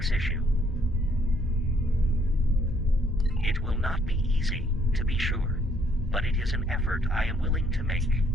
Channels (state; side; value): normal; both; correlation 0.67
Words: issue. It will not be easy, to be sure, but it is an effort I am willing to make,